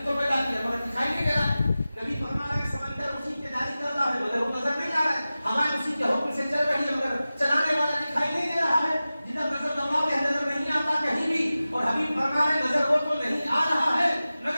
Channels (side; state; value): both; inverted; correlation -0.96